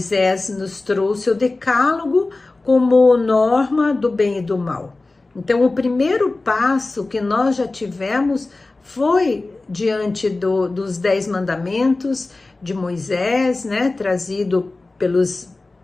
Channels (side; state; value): right; quieter; 3.3 dB